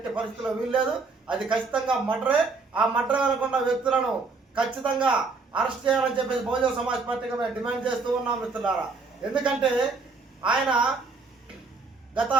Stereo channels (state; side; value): quieter; left; 4.2 dB